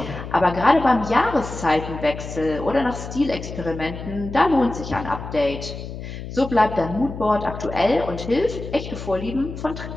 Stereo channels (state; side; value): noise; left; hum, 9 dB below the sound